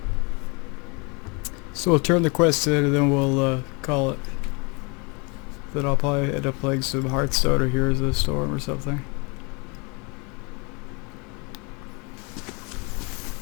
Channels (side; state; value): right; quieter; 30.9 dB